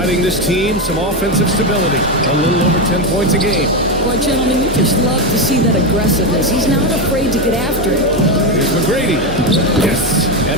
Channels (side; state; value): both; normal; correlation 0.11